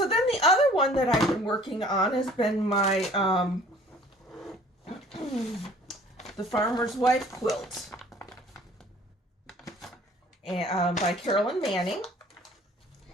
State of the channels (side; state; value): both; normal; correlation 0.52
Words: the other one that I've been working on has been my The Farmer's Wife quilt, and by Carolyn Manning,